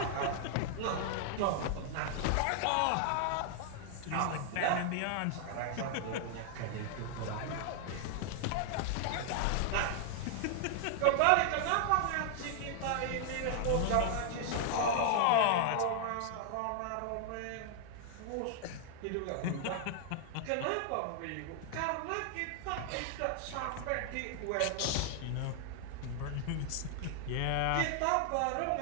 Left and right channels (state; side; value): different; both; correlation 0.00